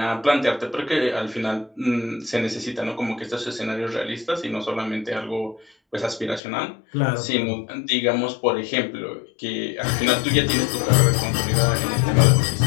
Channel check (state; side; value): drops out; right; at 6.4 s